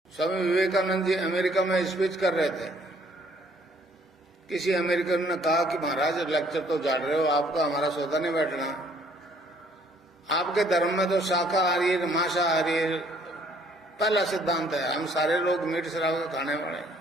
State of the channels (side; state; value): both; normal; correlation 0.62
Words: Swami Vivekananda ji America में speech कर रहे थे। किसी अमेरिकन ने कहा कि महाराज लेक्चर तो झाड़ रहे हो, आपका हमारा सौदा नहीं बैठना। आपके धर्म में तो शाकाहारी मांसाहारी पहला सिद्धांत है, हम सारे लोग मीट शराब खाने वाले।